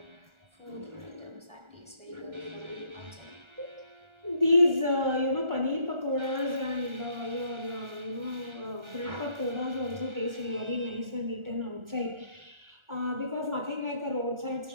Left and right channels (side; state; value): left; late; 1.4 ms